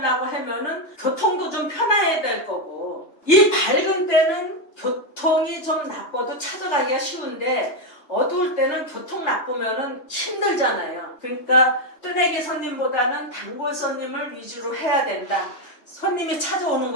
하면은 교통도 좀 편해야 될 거고 이 밝은 때는 교통이 좀 나빠도 찾아가기가 쉬운데 어두울 때는 교통 나쁘면은 힘들잖아요. 그러니까 뜨내기 손님보다는 단골 손님을 위주로 해야 된다. 손님이 찾아오는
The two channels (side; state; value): right; late; 3.2 ms